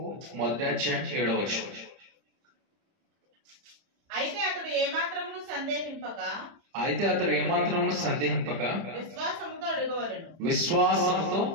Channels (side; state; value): left; late; 30 ms